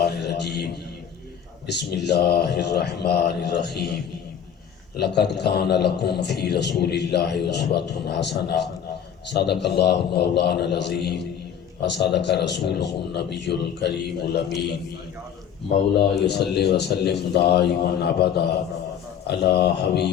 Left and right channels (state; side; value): quieter; right; 8.6 dB